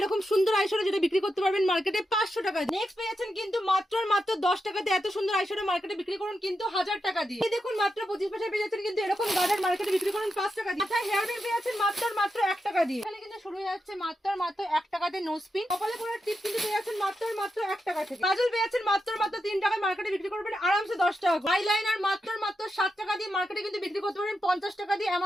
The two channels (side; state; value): both; normal; correlation 0.87